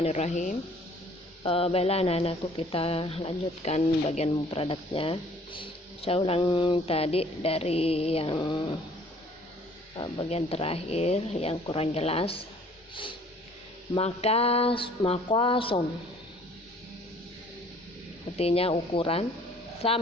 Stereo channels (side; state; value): both; normal; correlation 0.55